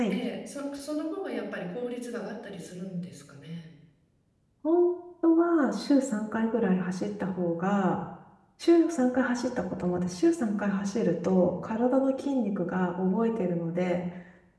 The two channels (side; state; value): both; identical; correlation 1.00